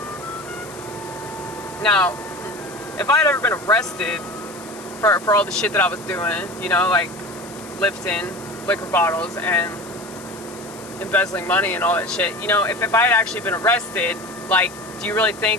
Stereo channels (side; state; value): left; noise; hiss, 18 dB below the sound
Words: Now, if I had ever been arrested for all the shit that I was doing, you know, like lifting liquor bottles and embezzling money and all that shit, you know, if I had actually been arrested, like, do you really